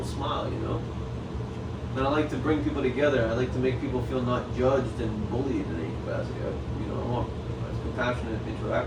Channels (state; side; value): identical; both; correlation 1.00